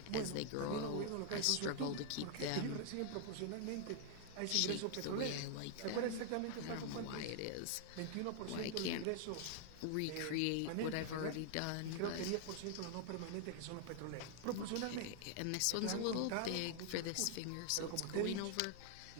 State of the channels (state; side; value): different; both; correlation 0.00